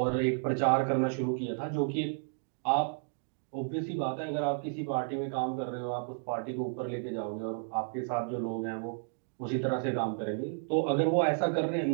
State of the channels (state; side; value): silent; left; digital silence